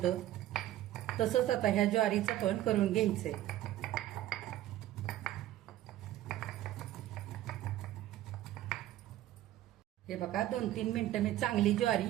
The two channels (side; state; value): left; quieter; 13.8 dB